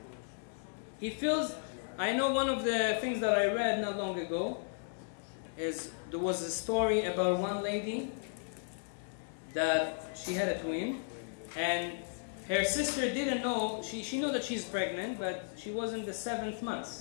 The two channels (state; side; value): silent; right; digital silence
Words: He feels. I know one of the things that I read not long ago is there was a story about one lady that she had a twin, and her sister didn't know. She knew that she's pregnant, but she was in the 7th